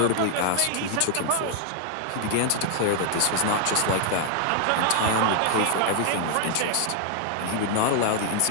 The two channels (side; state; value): both; different; correlation 0.00